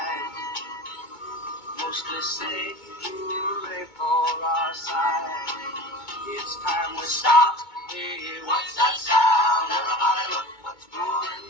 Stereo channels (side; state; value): right; late; 2.2 ms